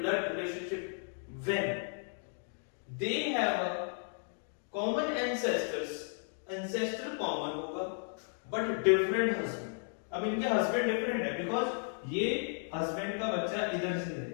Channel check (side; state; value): right; silent; 55 dB below the other